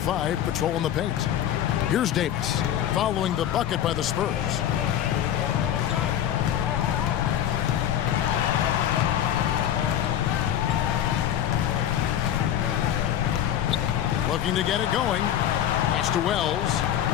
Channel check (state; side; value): quieter; right; 10.7 dB